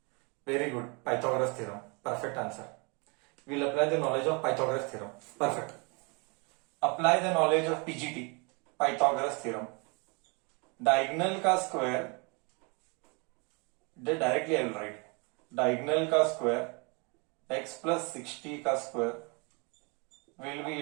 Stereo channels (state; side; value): quieter; left; 31.7 dB